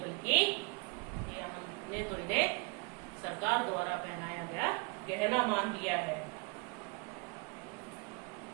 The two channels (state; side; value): quieter; left; 30.5 dB